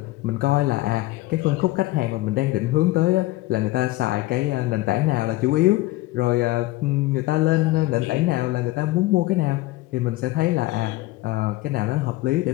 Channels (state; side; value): quieter; right; 18.4 dB